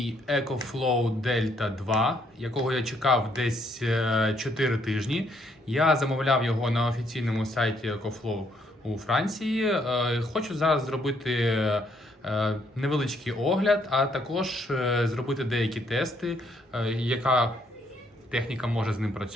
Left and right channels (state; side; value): normal; both; correlation 0.70